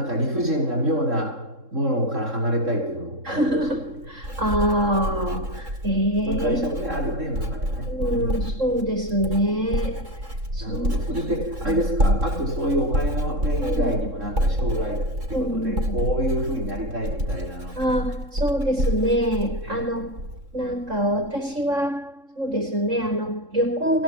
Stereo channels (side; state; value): left; late; 3.7 ms